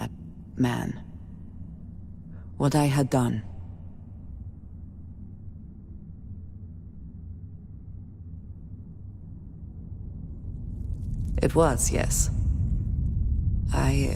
man. What I had done. It was, yes. I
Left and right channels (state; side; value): identical; both; correlation 1.00